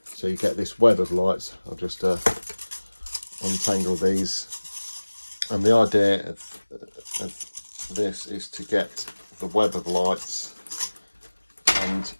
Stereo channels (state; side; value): inverted; both; correlation -1.00